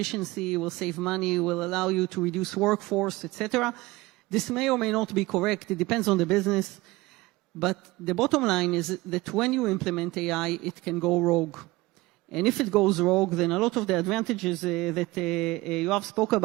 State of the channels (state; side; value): quieter; left; 20.5 dB